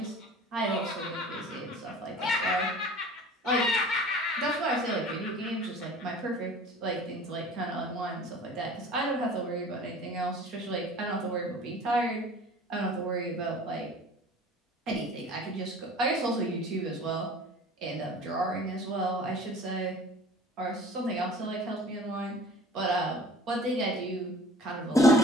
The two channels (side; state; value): both; normal; correlation 0.44